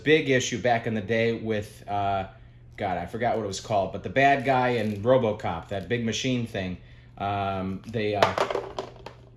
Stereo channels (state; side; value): identical; both; correlation 1.00